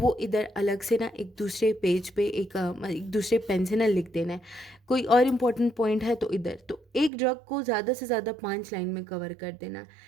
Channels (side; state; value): left; drops out; at 7.1 s